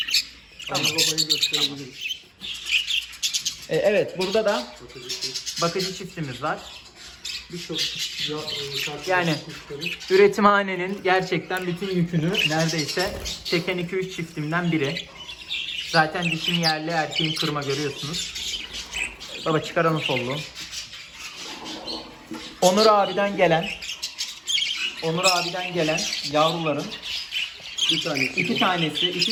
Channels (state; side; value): identical; both; correlation 1.00